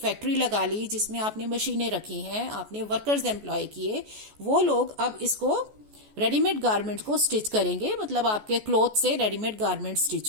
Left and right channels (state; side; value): late; left; 14 ms